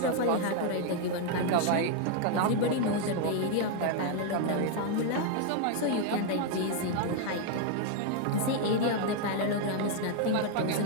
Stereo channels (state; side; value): different; both; correlation 0.01